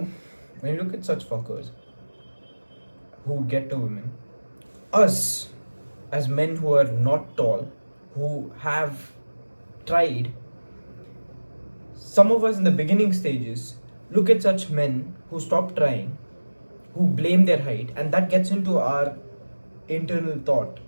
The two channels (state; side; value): inverted; both; correlation -1.00